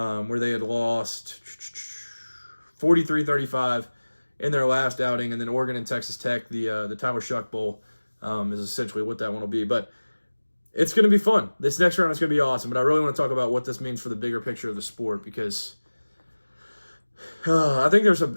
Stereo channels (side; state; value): both; inverted; correlation -1.00